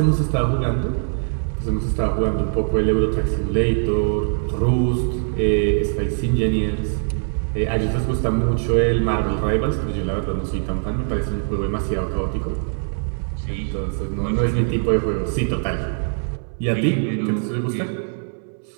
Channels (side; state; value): left; silent; 64 dB below the other